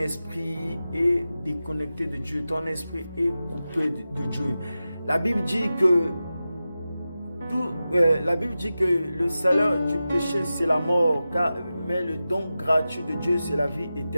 est déconnecté de Dieu. Ton esprit est coupé de Dieu. La Bible dit que le salaire du péché, c'est la mort, mais le don gratuit de Dieu, c'est la vie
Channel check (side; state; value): both; inverted; correlation -0.93